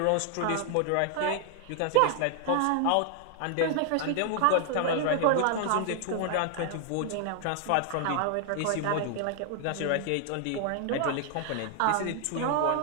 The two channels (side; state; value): both; different; correlation 0.00